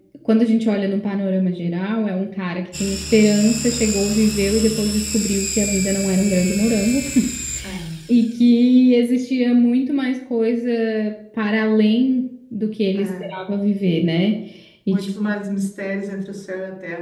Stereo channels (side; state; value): both; identical; correlation 1.00